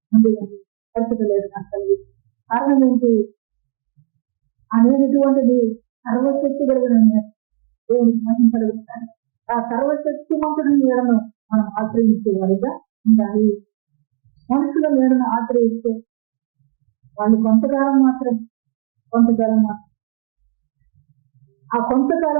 ఉండదు. పరిస్థితి లేదు నాకు కలిగి. కారణం ఏంటి అనేటువంటిది సర్వశక్తి కలిగిన దేవునికి మహిమ కలుగుతారు. ఆ సర్వశక్తి మంతుడి నీడను మనం ఆశ్రయించే వారిగా ఉండాలి. మనుషుల నీడను ఆశ్రయిస్తే వాళ్ళు కొంతకాలం మాత్రం ఆ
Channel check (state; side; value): silent; left; digital silence